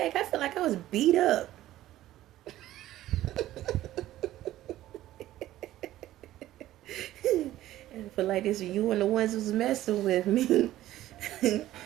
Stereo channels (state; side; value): quieter; left; 14.4 dB